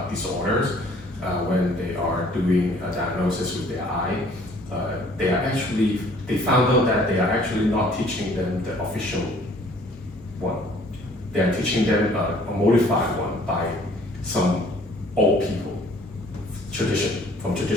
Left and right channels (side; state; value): both; normal; correlation 0.56